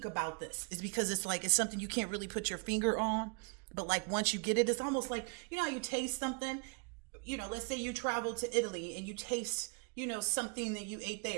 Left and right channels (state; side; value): quieter; left; 36.0 dB